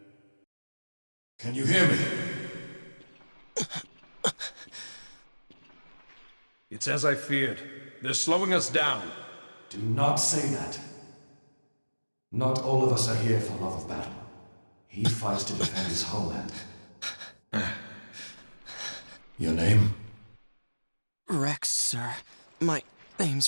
Can you hear me? It's as I feared. They're slowing us down. Do not say that. Not all of us are here for love of battle. He fights to defend his homeland. Your name? Rex, sir. My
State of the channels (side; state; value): both; inverted; correlation -1.00